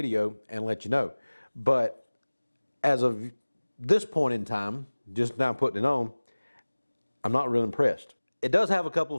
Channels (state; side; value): inverted; both; correlation -1.00